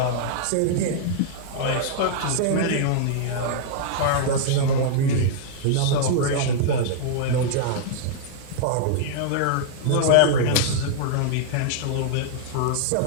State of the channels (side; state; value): both; different; correlation -0.01